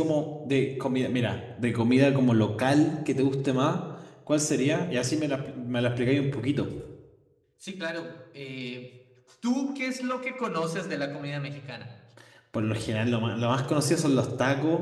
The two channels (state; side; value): identical; both; correlation 1.00